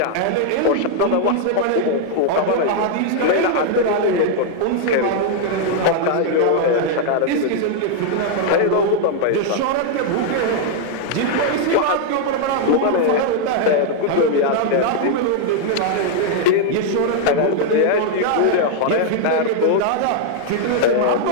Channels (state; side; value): different; both; correlation 0.00